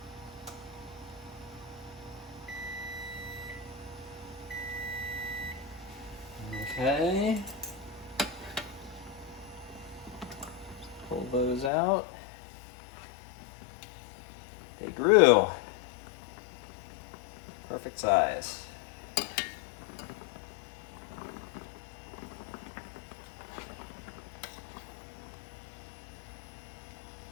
Okay. Pull those out. They grew. Perfect size.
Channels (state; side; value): drops out; right; at 11.7 s